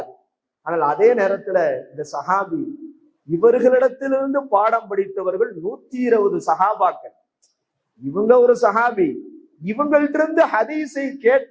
ஆனால் அதே நேரத்துல இந்த சஹாபி, இவர்களிடத்திலிருந்து பாடம் படித்தவர்கள் 120 சஹாபாக்கள். இவங்க ஒரு சஹாபி, இவங்கள்ட்ட இருந்து ஹதீஸை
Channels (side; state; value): both; identical; correlation 1.00